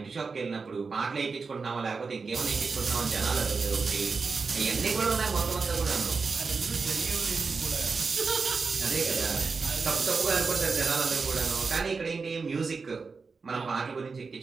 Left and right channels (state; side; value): quieter; left; 4.7 dB